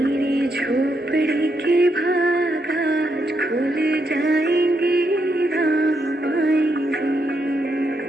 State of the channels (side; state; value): both; normal; correlation 0.80